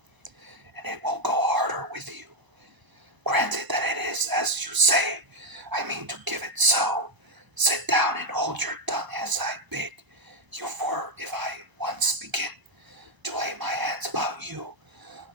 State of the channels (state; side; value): late; left; 1.0 ms